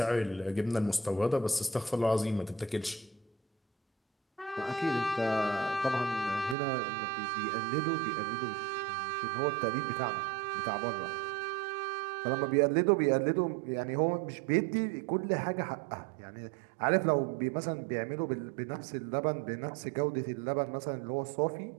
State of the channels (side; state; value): left; drops out; at 6.6 s